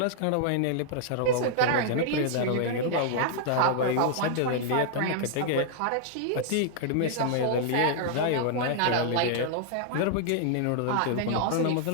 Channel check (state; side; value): different; both; correlation -0.01